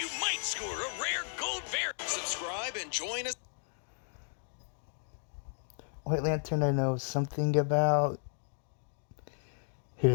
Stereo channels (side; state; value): right; silent; digital silence